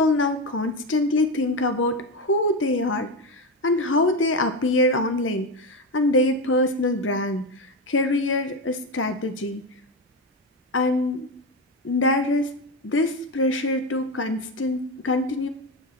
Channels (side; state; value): both; normal; correlation 0.15